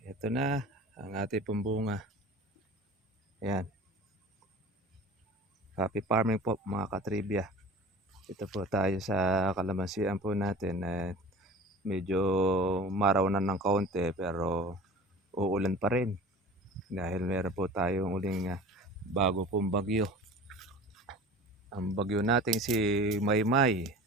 Ito na ang ating pong bunga. Ayan. Happy farming po mga katribya. Ito po tayo sa kalamansian po natin. Medyo maraw na ng kaunti pero uulan pa rin. Dahil meron po tayong uling bago pong bagyo. Ang bagyo natin si Maymay.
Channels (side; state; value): both; normal; correlation 0.40